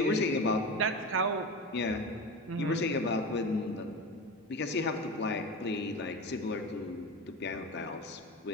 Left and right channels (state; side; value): normal; both; correlation 0.26